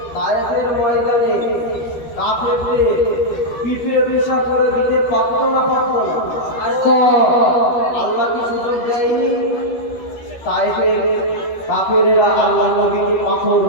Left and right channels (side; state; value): right; late; 13 ms